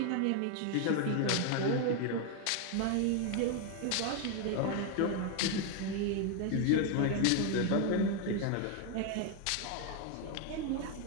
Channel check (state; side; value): different; both; correlation 0.01